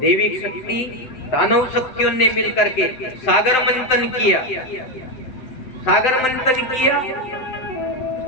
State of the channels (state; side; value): late; right; 7.8 ms